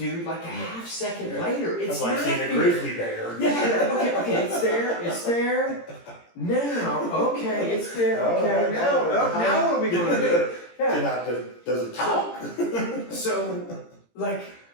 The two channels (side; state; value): right; late; 17 ms